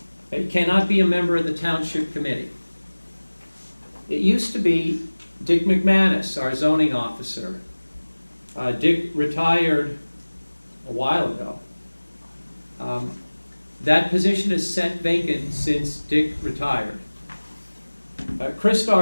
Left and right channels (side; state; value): both; inverted; correlation -1.00